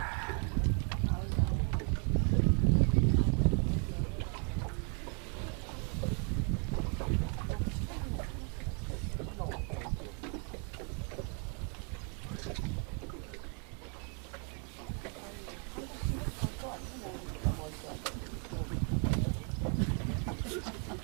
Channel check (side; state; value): left; quieter; 38.4 dB